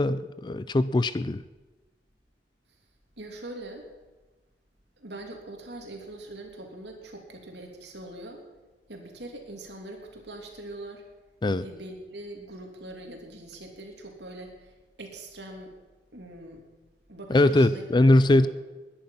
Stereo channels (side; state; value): both; normal; correlation 0.82